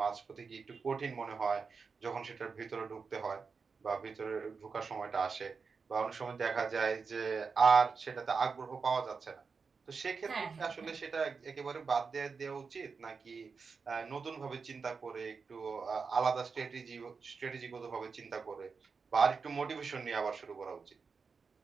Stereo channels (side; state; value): left; quieter; 5.1 dB